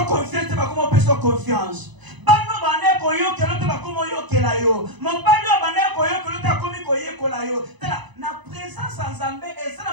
confiance ba como peso confiance bano bane ko yo kelo te ba como yo kela yo mobali bane ko yo kelo te komi ko ye kola yo tala na présence nzambe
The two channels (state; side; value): late; left; 1.0 ms